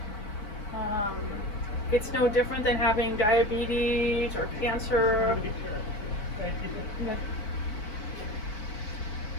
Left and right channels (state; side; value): late; right; 4.6 ms